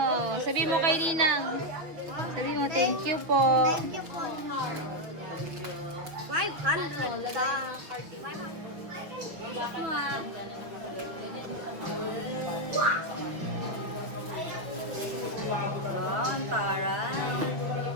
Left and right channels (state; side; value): late; left; 6.4 ms